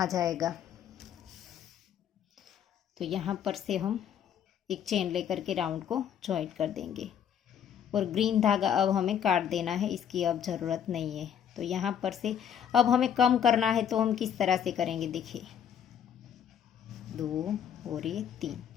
जाएगा। तो यहाँ पर से हम एक चेन लेकर के राउंड को जॉइंट कर देंगे और ग्रीन धागा अब हमें काट देना है, इसकी अब ज़रूरत नहीं है। तो यहाँ पर से अब हमें कम करना है, तो हम किस तरह से करेंगे। देखिए 2 और ये 3।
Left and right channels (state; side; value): quieter; right; 8.9 dB